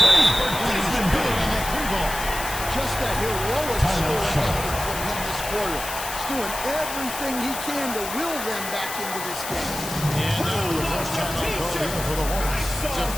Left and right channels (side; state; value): left; noise; hiss, 7 dB below the sound